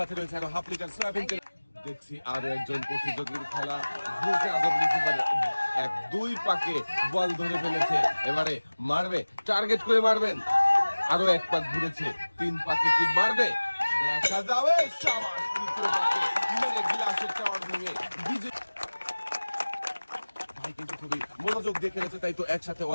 রয়েছে আরো হাফ লিটার সয়াবিন তেল। দেখছি আরো একজন প্রতিযোগীর খেলা ঘুরছে আজব রিসিভারে 1-2 পাকে বল ধরে ফেলেছে। এবারে মারবে, টার্গেট করে মারবেন। আরো 1 পাক ঘুরেছে, 3 পাকে কি মারবে দেখা যাবে। শাবাশ, তৃতীয় পাকে মেরে গ্লাসের টাওয়ার ভেঙে বিজয়। ভাই কিন্তু খুবই মনোযোগ দিয়ে খেলেছে, তাই তো একসাথে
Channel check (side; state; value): both; inverted; correlation -1.00